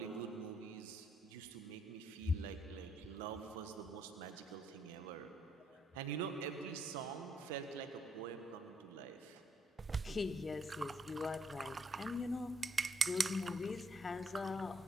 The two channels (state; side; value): normal; both; correlation 0.71